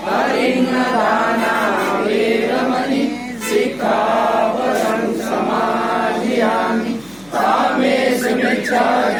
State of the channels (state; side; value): noise; left; hum, 27 dB below the sound